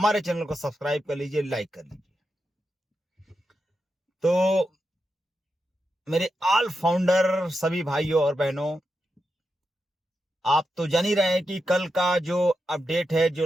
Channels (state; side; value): normal; both; correlation 0.87